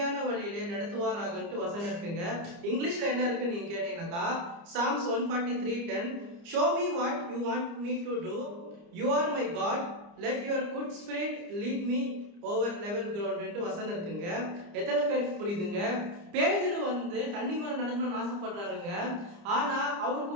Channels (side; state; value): left; late; 29 ms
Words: வழியிலே நடத்துவாராகன்ட்டு வசனம் இருக்குங்க. இங்கிலீஷ்ல என்ன இருக்குன்னு நீங்க கேட்டீங்கன்னாக்கா, Psalms 143:10, show me what you want me to do, you are my God, let your good spirit lead me over level ground வசனம் இருக்குங்க. எத்தனை பேருக்கு புரியுதுங்க? பேதுரு தண்ணி மேல நடக்கணும்னு ஆசைப்படுறாருங்க. ஆனா